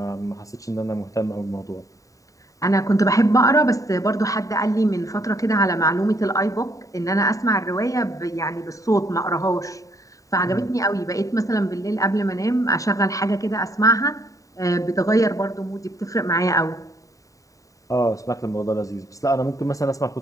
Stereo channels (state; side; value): late; right; 0.16 ms